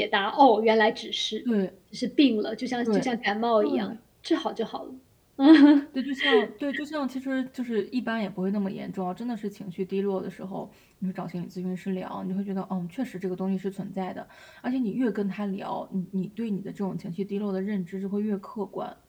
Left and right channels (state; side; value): identical; both; correlation 1.00